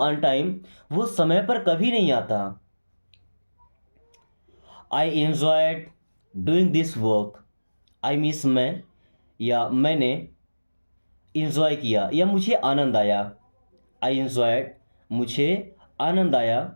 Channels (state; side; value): inverted; both; correlation -1.00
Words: time, वो समय पर कभी नहीं आता। I enjoyed doing this work, I means मैं, या मैंने इंजॉय किया या मुझे आनंद आया। आई एंजॉयड, मुझे आनंद आया।